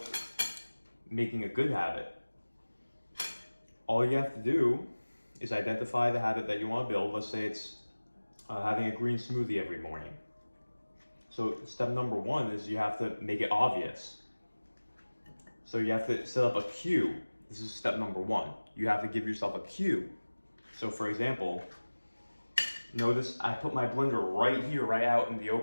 making a good habit. All you have to do is identify the habit that you want to build. Let's say it's having a green smoothie every morning. So step number one is you have to make it obvious. So you have to set up a cue. This is step number one. You have to give yourself a cue. So for example, notice I put my blender right here, right out in the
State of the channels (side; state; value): both; inverted; correlation -1.00